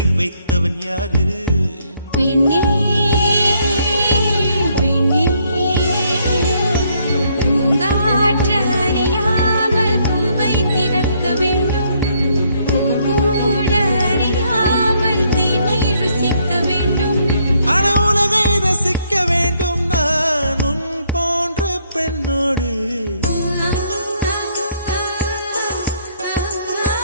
வைத்தவன் யாரு? பெண்ணே பெண்ணே பூங்காற்று அறியாமல் பூவை திறக்க வேண்டும். பூங்கூட அறியாமல் தீமை ருசிக்க வேண்டும். ஆன உலகை ரசிக்க வேண்டும் நான் உன் போன்ற பெண்ணோடு.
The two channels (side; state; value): both; inverted; correlation -0.70